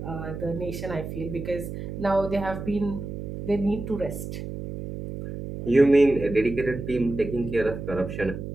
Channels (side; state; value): right; noise; hum, 7 dB below the sound